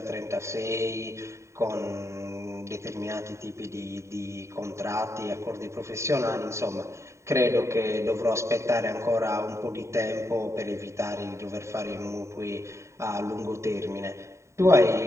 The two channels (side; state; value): left; late; 0.14 ms